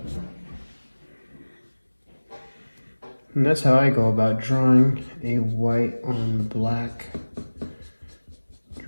And that's how I go about drawing a white on black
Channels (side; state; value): both; inverted; correlation -1.00